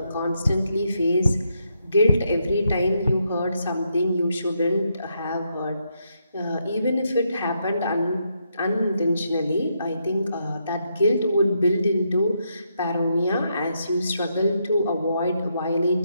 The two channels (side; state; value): both; inverted; correlation -0.79